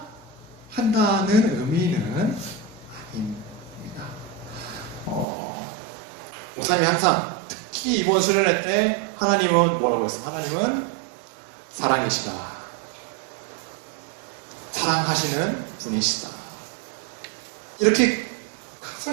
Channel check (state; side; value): drops out; left; at 5.2 s